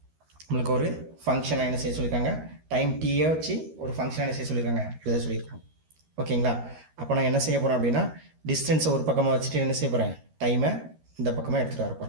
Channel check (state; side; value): late; left; 13 ms